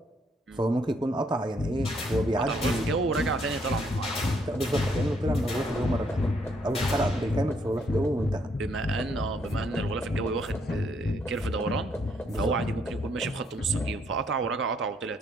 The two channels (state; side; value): normal; both; correlation 0.71